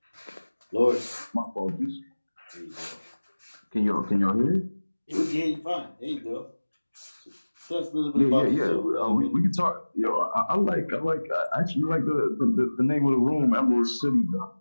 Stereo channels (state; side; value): inverted; both; correlation -1.00